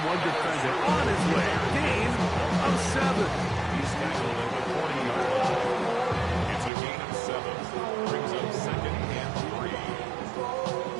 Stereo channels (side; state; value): left; drops out; at 6.7 s